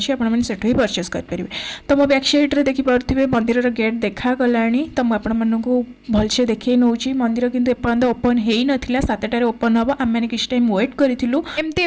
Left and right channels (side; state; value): both; identical; correlation 1.00